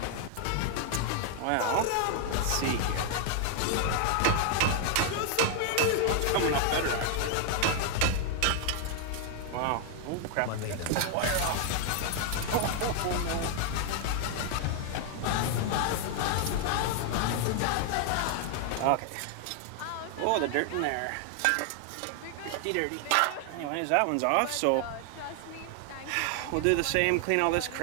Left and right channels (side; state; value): both; different; correlation 0.00